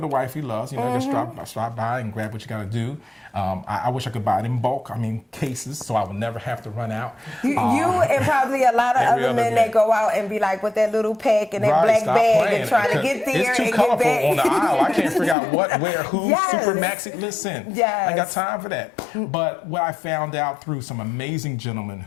wife he loves. Just stop by and grab what you got to do. I wish I could buy it in bulk. Cases, so I would never have to run out. You and probably a lot of other men that go out and be like with that little pack and that black bag and trying to get there it's too and colorful get back. on the aisle. I can't figure out what, where, who. Yes. Super maxi. Listen, yes. I ain't got time for that. But what I found out through some amazing gentlemen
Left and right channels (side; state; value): right; drops out; at 15.4 s